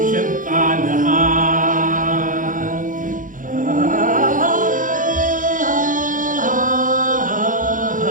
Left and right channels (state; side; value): late; left; 0.38 ms